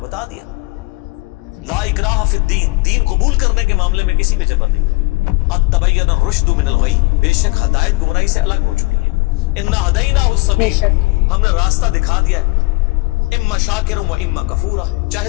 دیا۔ لا اکراہ فی الدین، دین قبول کرنے کے معاملے میں کسی پہ جبر نہیں۔ قد تبین الرشد من الغی، بے شک ہدایت گمراہی سے الگ ہو چکی ہے۔ انا ہدیناہ السبیل، ہم نے راستہ دکھا دیا ہے۔ اما شاکر و اما کفورا، چاہے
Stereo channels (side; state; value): right; quieter; 24.9 dB